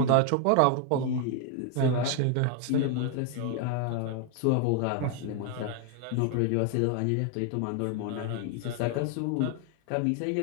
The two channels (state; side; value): different; both; correlation 0.00